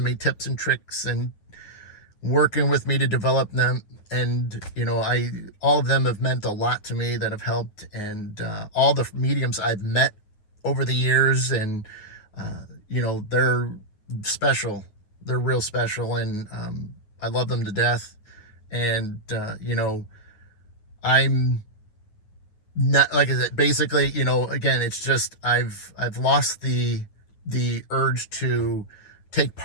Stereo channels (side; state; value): right; late; 9.6 ms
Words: me tips and tricks and working with me to develop them. And all of them have meant a lot to me, that have helped. And all the mediums I've met over the years, and they're special. They're real special, and I love them to death. And I'm not, like I said, basically, again, it's just I've lost the urge to take